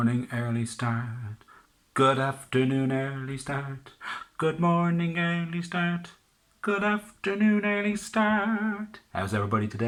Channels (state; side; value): identical; both; correlation 1.00